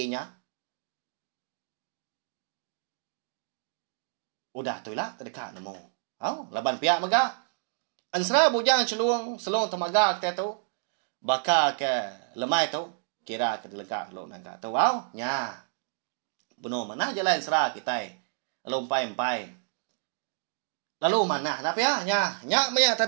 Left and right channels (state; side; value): silent; left; digital silence